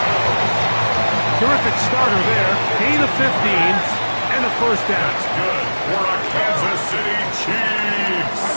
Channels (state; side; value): inverted; both; correlation -1.00